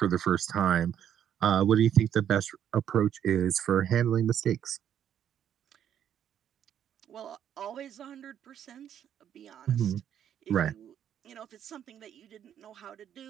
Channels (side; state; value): left; quieter; 9.7 dB